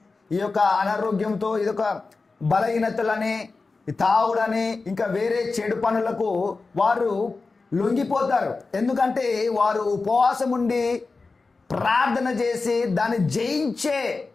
ఈ యొక్క అనారోగ్యంతో, ఇదొక బలహీనతలని, తాగుడని, ఇంకా వేరే చెడు పనులకు వారు లొంగిపోతారు. ఎందుకంటే వారు ఉపవాసం ఉండి ప్రార్థన చేసి దాన్ని జయించే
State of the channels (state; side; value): quieter; right; 4.0 dB